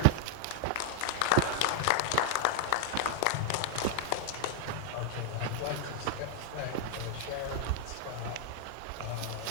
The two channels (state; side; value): different; both; correlation 0.00